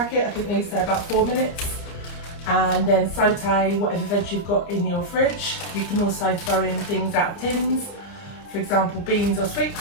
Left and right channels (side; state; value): right; late; 30 ms